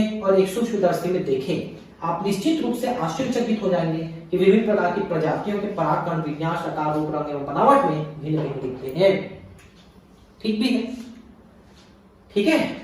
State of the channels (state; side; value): identical; both; correlation 1.00